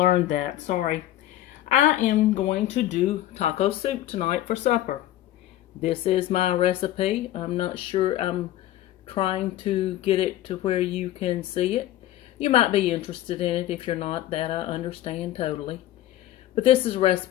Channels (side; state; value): right; quieter; 13.8 dB